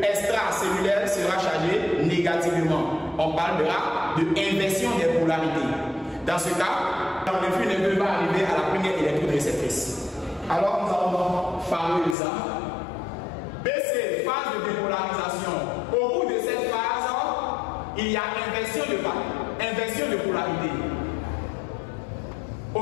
extracellulaire sera chargé négativement. On parlera de inversion des polarités. Dans ce cas, l'influx nerveux va arriver à la première électrode réceptrice. Alors nous allons parler de ça. BC, phase de dépolarisation. Au bout de cette phase, il y a inversion de polarité. Au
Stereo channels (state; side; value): drops out; right; at 12.2 s